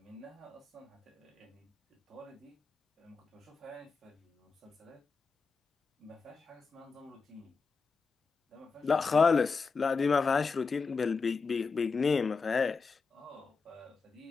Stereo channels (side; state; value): right; quieter; 4.7 dB